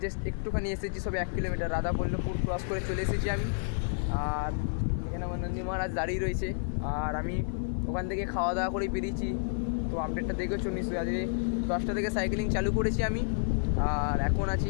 জাস্ট একটুখানি এসেছি, সবে 1 কিলোমিটার। রাধাবল্লভপুর ক্রস করে চলে এসেছি আমি। আর এখানে আমার নন্দী মহারাজ দাঁড়িয়ে রয়েছে, আর আমি ওখান থেকে খাওয়া দাওয়া করেই বেরিয়েছি। তো আপডেটটা দেখেছো নিশ্চয়ই, আজকে 10টা থেকে সাইকেলিং চালু করেছি আমি। আর এখন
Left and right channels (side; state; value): right; silent; 58 dB below the other